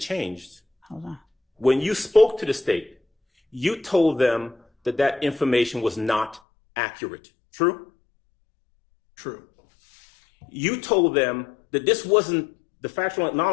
hold on. when you spoke to the state, you told them that that information was not accurate. True? True. You told them that this wasn't the factual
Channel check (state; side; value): drops out; right; at 6.4 s